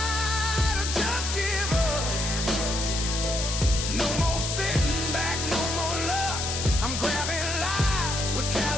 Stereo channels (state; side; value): noise; left; hiss, 3 dB below the sound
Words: or just give up. No more sitting back, no more luck. I'm grabbing life with